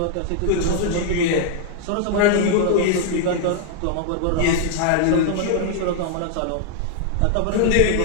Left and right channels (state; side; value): different; both; correlation 0.00